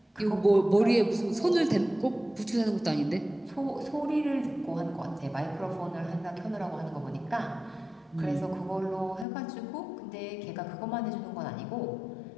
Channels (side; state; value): right; drops out; at 9.2 s